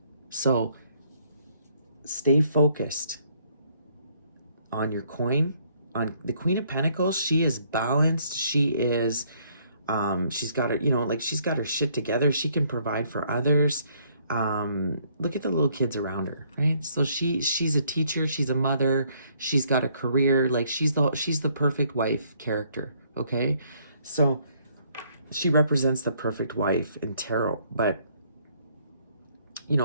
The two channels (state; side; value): inverted; both; correlation -0.66